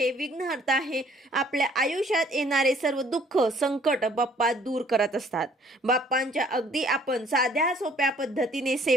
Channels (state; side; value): normal; both; correlation 0.59